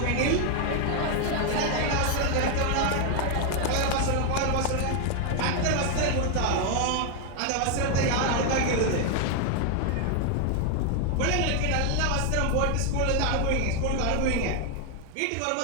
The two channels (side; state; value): both; different; correlation 0.00